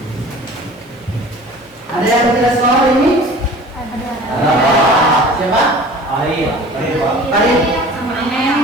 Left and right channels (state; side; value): normal; both; correlation 0.44